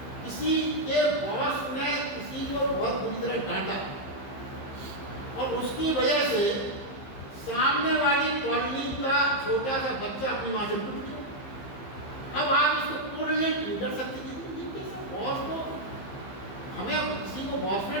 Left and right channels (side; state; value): right; late; 15 ms